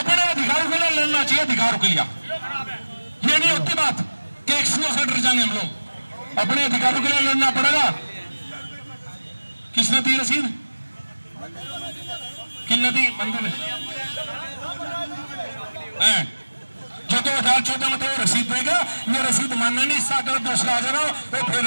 अधिकारों के लिए लड़ना चाहिए, अधिकारों के लिए। ये नहीं होती बात कि एक्सियों से डर जाएंगे हम लोग, अपने अधिकारों के लिए लड़ना पड़ेगा। किसने दी रसीद, किसने दी मंदिर जो 2014 में तो रसीद देगा, ये रसीद मानने नहीं, इसका अगर दूसरा आ जाना वो फिर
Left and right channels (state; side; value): inverted; both; correlation -1.00